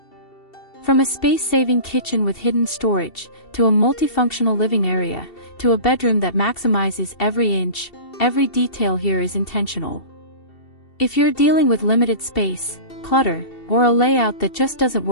From a space-saving kitchen with hidden storage, to a multifunctional living area, to a bedroom that maximizes every inch, every detail here is intentional. If you're dealing with limited space, clutter, or a layout that just doesn't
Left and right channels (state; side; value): late; right; 2.7 ms